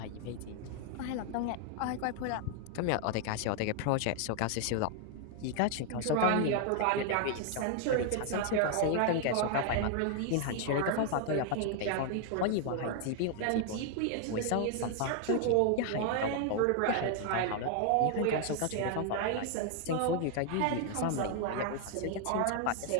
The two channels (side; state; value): both; different; correlation 0.00